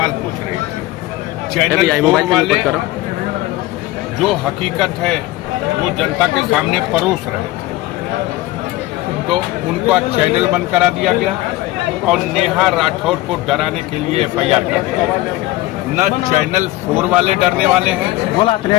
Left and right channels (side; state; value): right; quieter; 17.7 dB